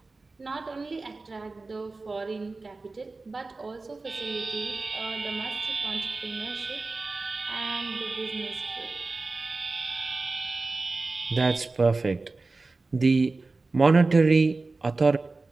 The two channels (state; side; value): quieter; left; 3.6 dB